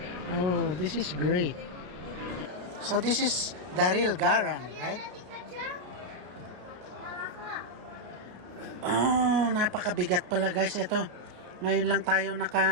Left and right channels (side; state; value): left; late; 33 ms